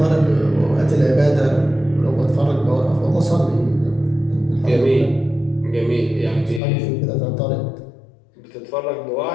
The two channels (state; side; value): drops out; right; at 6.6 s